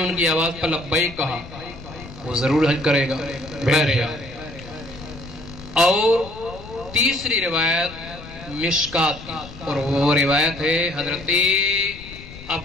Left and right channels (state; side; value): noise; left; rumble, 16 dB below the sound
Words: کی آواز پر لبیک کہا وہ ضرور حج کرے گا. اور تیسری روایت مشکات کی، اور وہ روایت ہے حضرت